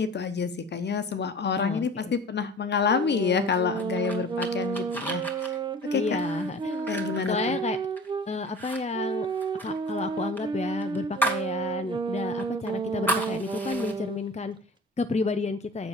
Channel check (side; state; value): both; normal; correlation 0.42